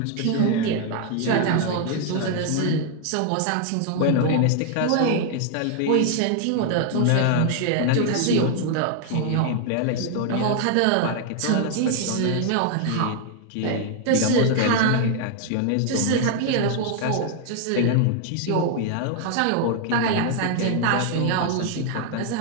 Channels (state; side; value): different; both; correlation 0.00